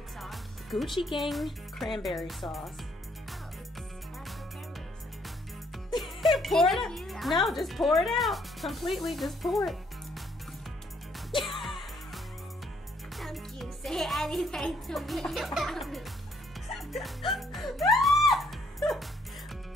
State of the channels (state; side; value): normal; both; correlation 0.68